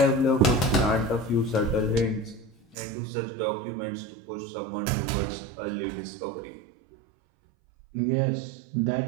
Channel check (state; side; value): drops out; left; at 2.8 s